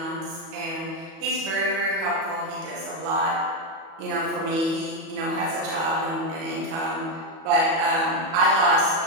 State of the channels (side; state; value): left; late; 37 ms